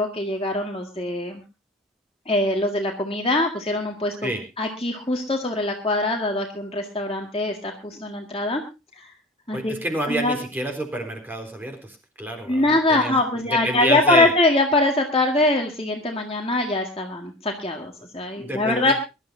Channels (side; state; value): both; normal; correlation 0.33